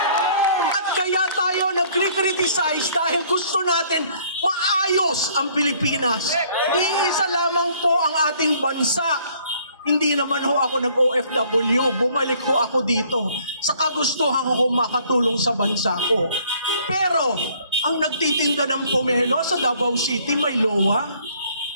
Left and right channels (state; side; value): inverted; both; correlation -0.60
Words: At kaya tayo nagkri-criticize dahil gusto natin maayos ang Pilipinas. Iisa lamang po ang ating bansa. Hindi naman ho ako nag-OFW, bumalik ho ako dito sa kagustuhan ko makatulong sa bansa ko. Pero, ang nagtitinda ng pomelo sa Davao City, may LOA,